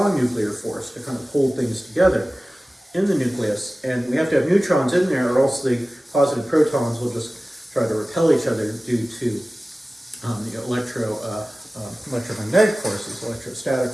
nuclear force to kind of hold things together in the nucleus. And we have to have neutrons in there, or else the positive protons will just try to repel each other due to the electromagnetic forces, electrostatic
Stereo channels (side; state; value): both; normal; correlation 0.97